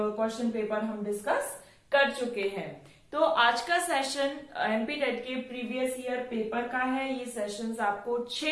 पेपर हम डिस्कस कर चुके हैं। तो आज का सेशन एमपी टेट के प्रीवियस ईयर पेपर का है। ये सेशंस आपको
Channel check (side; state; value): both; identical; correlation 1.00